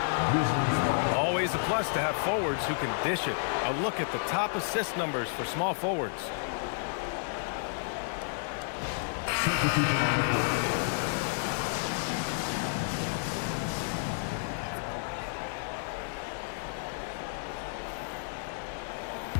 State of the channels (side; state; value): right; silent; digital silence